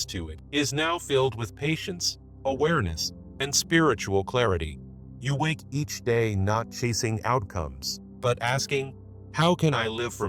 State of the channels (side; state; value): both; identical; correlation 1.00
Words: to it is now filled with patience, awareness, and spiritual clarity. You wake each day not chasing outcomes, but asking, how can I live